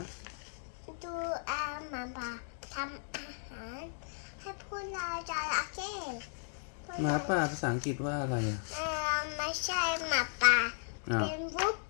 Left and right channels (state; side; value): silent; right; digital silence